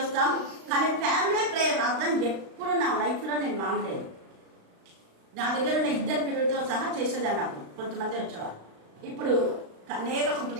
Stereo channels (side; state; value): left; late; 36 ms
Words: వస్తాం. కానీ ఫ్యామిలీ ప్రేయర్ అర్థం ఎప్పుడు నా లైఫ్ లో నేను మానలేదు. నా దగ్గర ఉన్న 2 పిల్లలతో సహా చేసేదాన్ని. నాకు కొంతమంది వచ్చేవారు, ఇప్పుడు అనేక